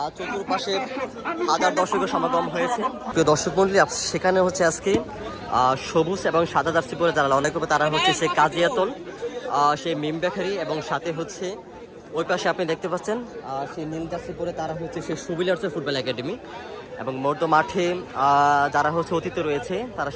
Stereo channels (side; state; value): both; identical; correlation 1.00